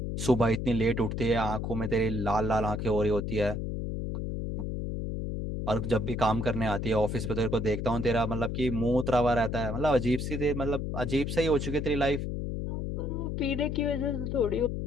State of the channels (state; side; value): noise; left; hum, 3 dB below the sound